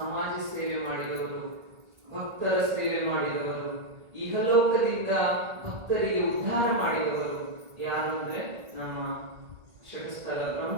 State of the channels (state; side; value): late; left; 1.8 ms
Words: ಸೇವೆ ಮಾಡಿದವರು, ಭಕ್ತರ ಸೇವೆ ಮಾಡಿದವರು, ಇಹಲೋಕದಿಂದ ಭಕ್ತರಿಗೆ ಉದ್ಧಾರ ಮಾಡಿದವರು ಯಾರು ಅಂದ್ರೆ ನಮ್ಮ ಷಟ್ಸ್ಥಲ